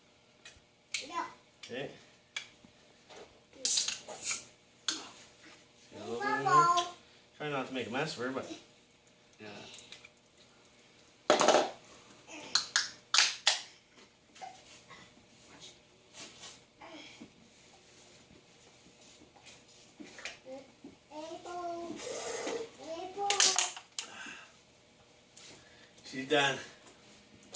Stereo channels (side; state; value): both; identical; correlation 1.00